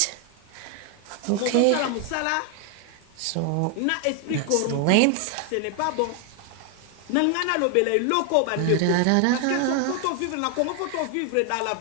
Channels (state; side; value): different; both; correlation 0.01